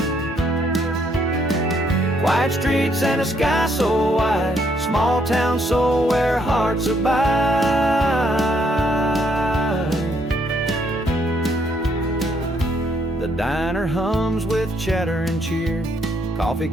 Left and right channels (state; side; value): normal; both; correlation 0.71